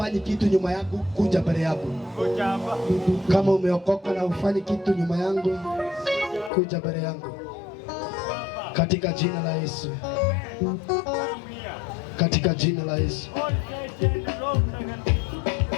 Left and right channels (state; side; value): drops out; right; at 6.5 s